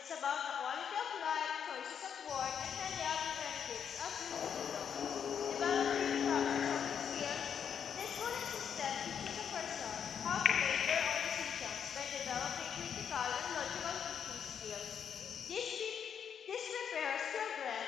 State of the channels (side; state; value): right; quieter; 7.8 dB